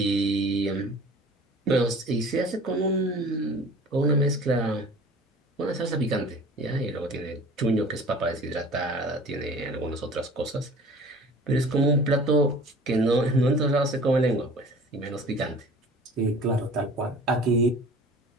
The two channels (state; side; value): normal; both; correlation 0.44